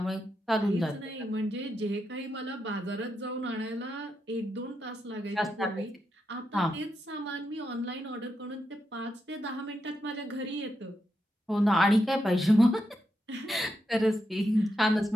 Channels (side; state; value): both; normal; correlation 0.84